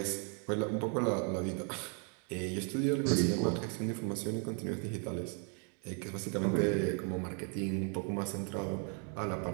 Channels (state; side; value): quieter; left; 39.6 dB